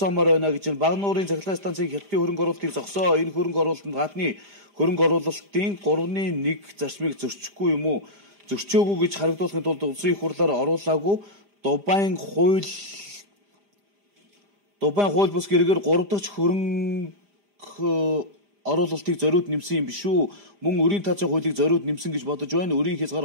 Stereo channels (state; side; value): late; left; 5.0 ms